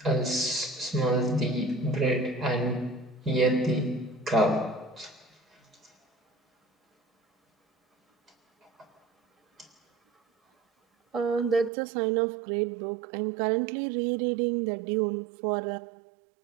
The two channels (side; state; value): left; drops out; at 11.7 s